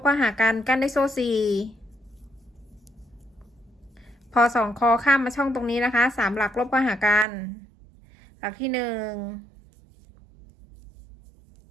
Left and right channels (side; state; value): left; drops out; at 7.2 s